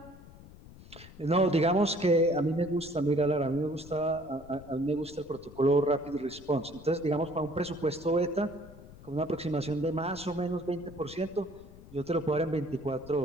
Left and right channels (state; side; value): noise; left; rumble, 19 dB below the sound